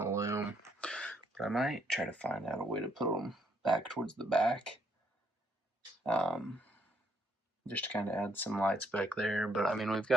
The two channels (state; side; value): normal; both; correlation 0.71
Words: loom. But I might try to find out a way to put them back towards the back, just to kind of add some lights back there. But I mean, we've